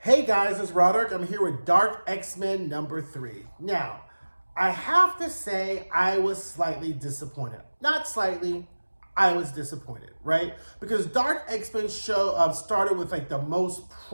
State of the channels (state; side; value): inverted; both; correlation -1.00